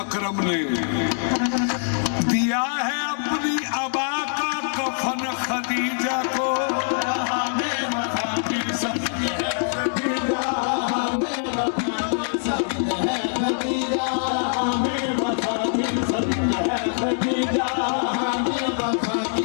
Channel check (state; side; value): silent; right; digital silence